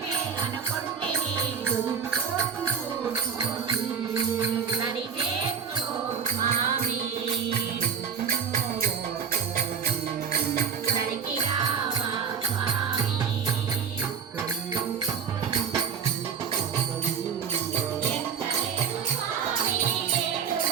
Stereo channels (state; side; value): quieter; left; 6.9 dB